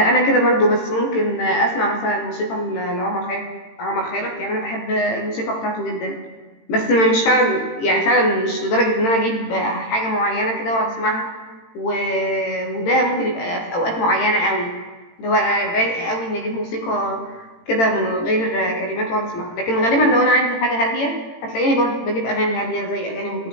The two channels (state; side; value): late; right; 18 ms